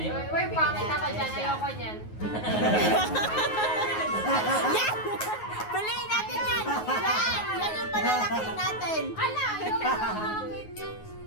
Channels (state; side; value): late; right; 9.4 ms